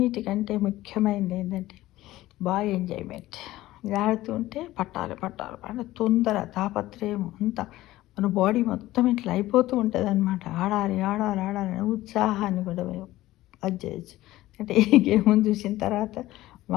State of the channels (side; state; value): right; quieter; 16.4 dB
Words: ముఖ్యమైనది ఏంటంటే బాగా ఎంజాయ్మెంట్. ఇది ఆడుతుంటే పట్టాలి అంటే తొందర తాపత్రయం అంతా మన బాడీ మొత్తం ఇట్లా అయిపోతూ ఉంటుంది అనమాట. ఆడాలి ఉత్సాహాన్ని కూడా అది చేయొచ్చు. అంటే ఈ గేమ్ చూసిన తర్వాత